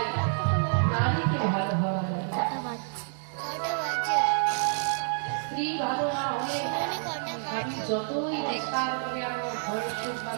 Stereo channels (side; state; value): left; silent; digital silence